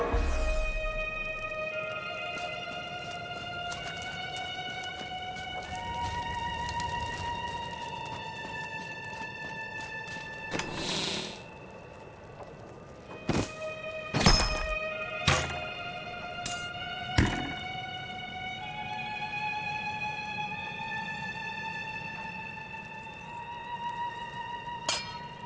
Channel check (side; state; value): both; identical; correlation 1.00